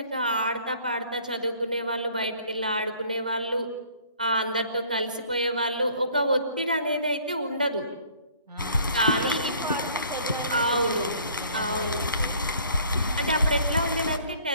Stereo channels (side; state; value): both; inverted; correlation -0.55